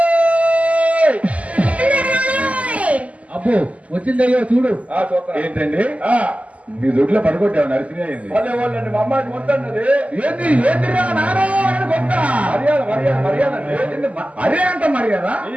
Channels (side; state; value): left; late; 0.068 ms